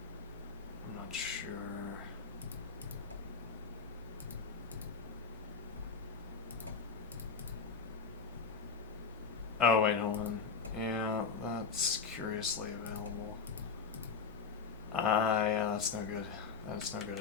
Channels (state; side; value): quieter; right; 5.3 dB